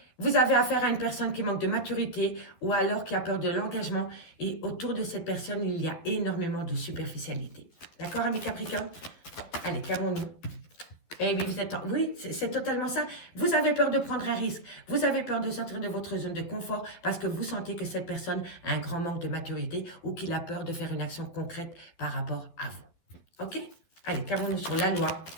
vous avez affaire à une personne qui manque de maturité ou alors qui a peur de l'engagement. Et autour de cette personne, il y a énormément de superficialité. D'accord, ami Capricorne? Allez, qu'avons-nous? Eh oui, vous êtes oui, c'est totalement ça. Vous avez peur de prendre un risque. Vous avez peur de sortir de votre zone de confort parce que vous sentez que cette personne a un grand manque de maturité ou qu'il a peur de faire une action concrète par rapport à vous. Ok? Allez, qu'avons-nous sur la loi?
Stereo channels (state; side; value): late; right; 12 ms